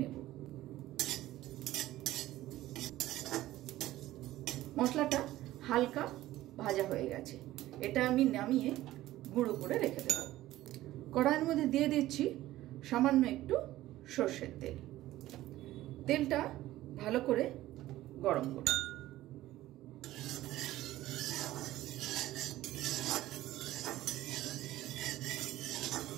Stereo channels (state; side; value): quieter; left; 15.5 dB